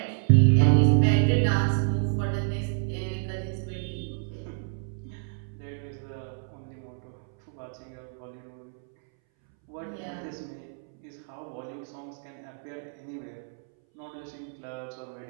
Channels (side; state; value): left; silent; 59 dB below the other